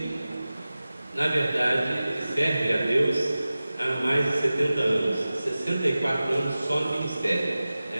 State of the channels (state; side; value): inverted; both; correlation -0.96